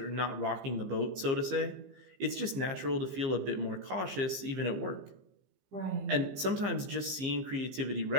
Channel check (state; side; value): late; left; 15 ms